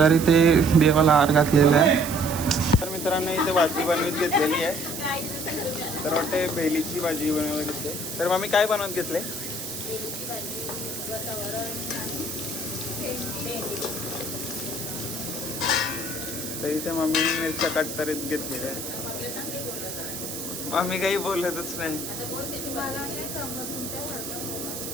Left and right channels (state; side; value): noise; right; hiss, 7 dB below the sound